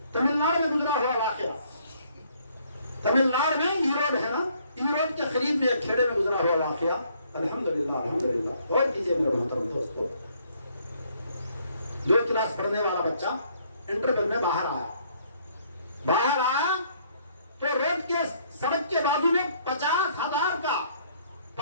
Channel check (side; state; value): both; inverted; correlation -0.65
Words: تمل ناڈو میں گزرا ہوا واقعہ، تمل ناڈو میں ایروڈ ہے نا، ایروڈ کے قریب میں ایک کھیڑے میں گزرا ہوا واقعہ۔ الحمدللہ الحمدللہ غور کیجیے میرے محترم دوستو، 2 کلاس پڑھنے والا بچہ انٹرویو میں باہر آیا تو روڈ کے سڑک کے بازو میں 50,000 کا